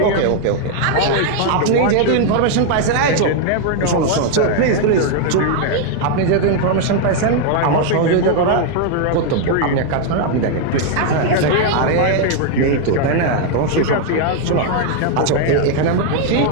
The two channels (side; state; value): both; different; correlation 0.00